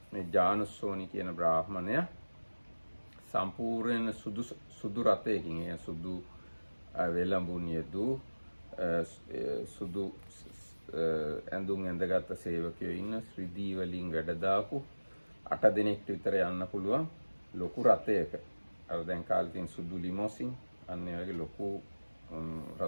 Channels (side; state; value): both; inverted; correlation -1.00